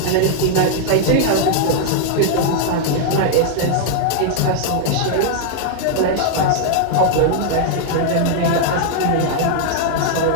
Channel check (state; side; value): different; both; correlation -0.01